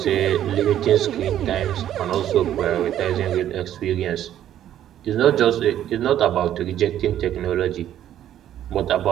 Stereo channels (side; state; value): left; quieter; 11.3 dB